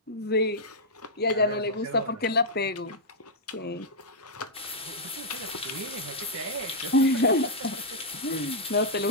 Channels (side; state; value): both; normal; correlation -0.07